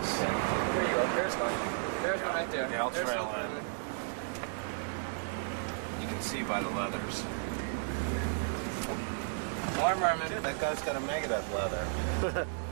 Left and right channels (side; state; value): left; silent; digital silence